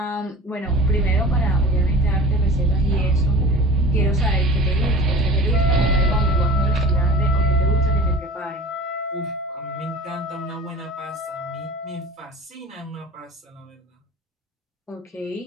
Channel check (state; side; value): normal; both; correlation 0.40